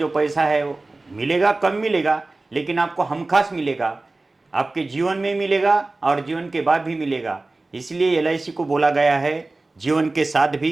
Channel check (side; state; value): left; quieter; 3.2 dB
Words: पैसा है वो मिलेगा, कम मिलेगा, लेकिन आपको हमखास मिलेगा, आपके जीवन में मिलेगा और जीवन के बाद भी मिलेगा। इसलिए LIC को बोला गया है जीवन के साथ भी